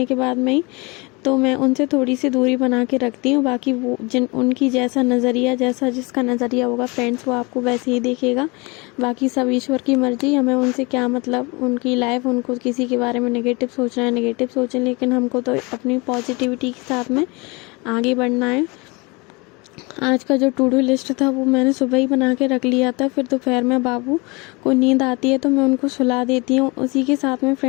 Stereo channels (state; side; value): quieter; right; 27.2 dB